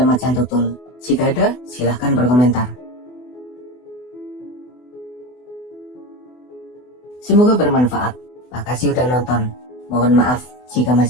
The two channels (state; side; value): late; right; 24 ms